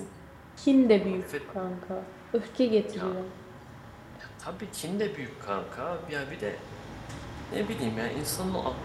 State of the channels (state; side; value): identical; both; correlation 1.00